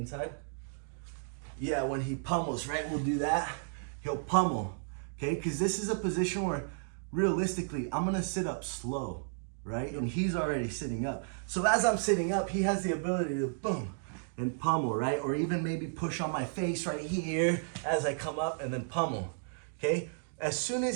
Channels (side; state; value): left; silent; digital silence